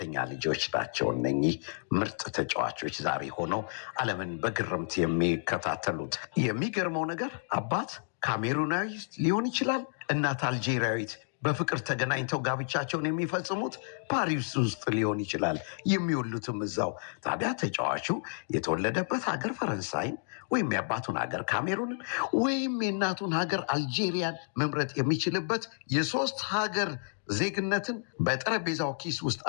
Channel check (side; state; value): right; silent; digital silence